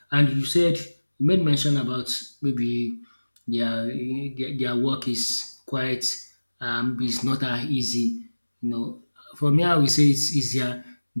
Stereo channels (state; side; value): inverted; both; correlation -1.00